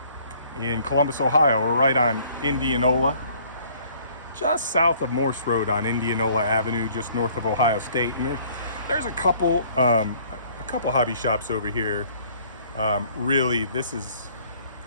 in Columbus, Ohio. We're right on Indianola, just south of Morse Road on Indianola Avenue, just north of Ohio State. And there's a couple hobby shops over here. Really, this is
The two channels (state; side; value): inverted; both; correlation -0.58